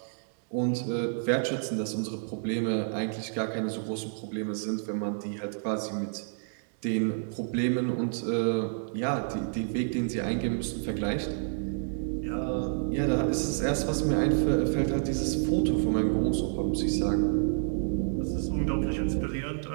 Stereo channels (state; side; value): silent; left; digital silence